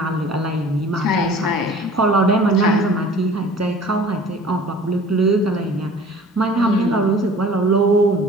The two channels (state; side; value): normal; both; correlation 0.46